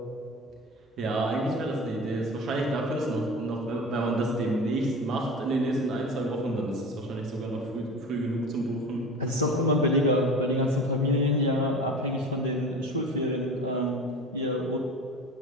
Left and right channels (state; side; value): normal; both; correlation 0.34